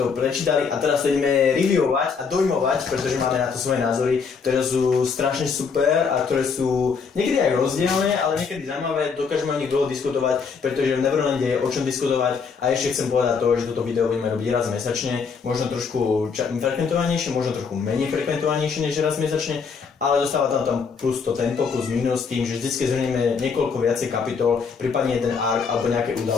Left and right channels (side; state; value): right; quieter; 5.6 dB